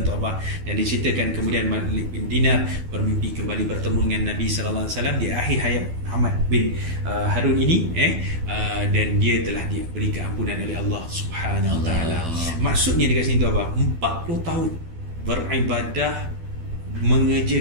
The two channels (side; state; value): left; late; 12 ms